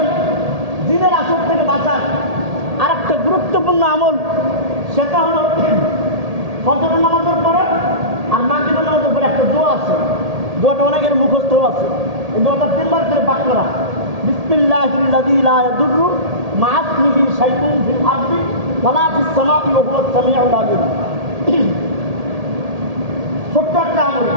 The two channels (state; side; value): late; left; 1.8 ms